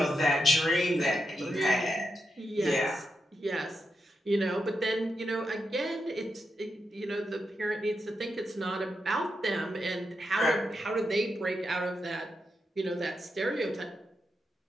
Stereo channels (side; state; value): both; normal; correlation 0.85